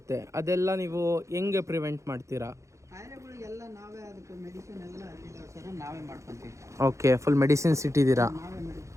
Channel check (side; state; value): left; late; 0.15 ms